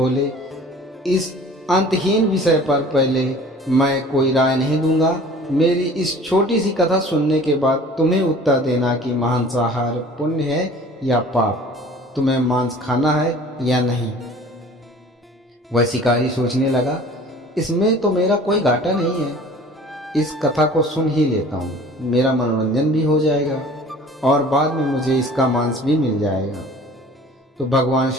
इस अंतहीन विषय पर पहले मैं कोई राय नहीं दूंगा। मेरी इस छोटी सी कथा सुनने के बाद तुम्हें उत्तर देना कि मांसाहार पुण्य है या पाप, तुम्हें मांस खाना है या नहीं। वह शिकारी सोचने लगा, इसमें तो मेरा कोई घाटा नहीं है, इस कथा को सुन ही लेता हूँ, मेरा मनोरंजन भी हो जाएगा और बाद में मुझे इसका मांस भी मिल जाएगा। तो भगवान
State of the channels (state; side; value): normal; both; correlation 0.47